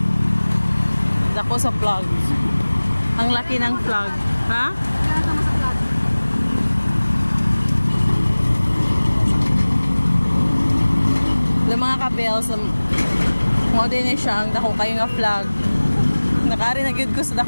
Dako sa vlog. Ang laki ng vlog. Ha? Yung mga kabels, mo din siya ang dako kayo nga vlog. Nakari na gyud ko sa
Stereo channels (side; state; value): both; inverted; correlation -1.00